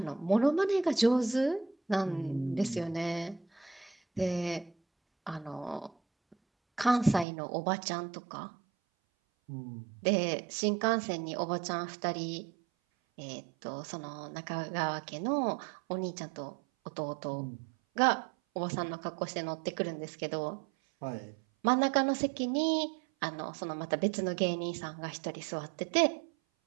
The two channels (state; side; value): drops out; left; at 7.2 s